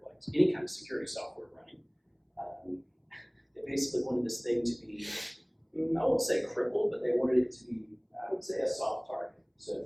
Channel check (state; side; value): identical; both; correlation 1.00